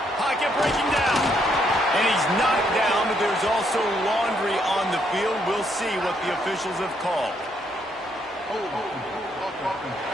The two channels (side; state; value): both; normal; correlation 0.73